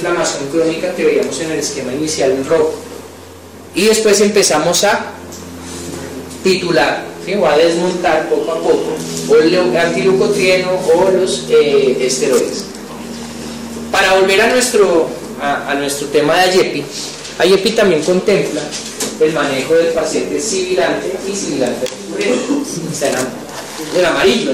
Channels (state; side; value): identical; both; correlation 1.00